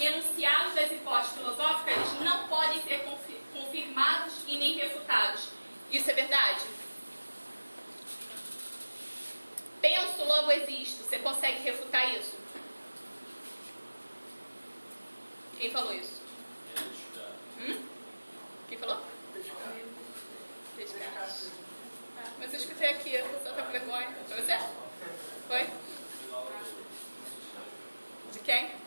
das hipóteses filosóficas eles não podem ser confirmados e nem refutados. Isso é verdade? Penso, logo existo. Você consegue refutar isso? Quem falou isso? Quem falou? Pescar. Mas eu escutei aqui, a pessoa tá com vergonha. Foi você? Foi? De quem?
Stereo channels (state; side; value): inverted; both; correlation -1.00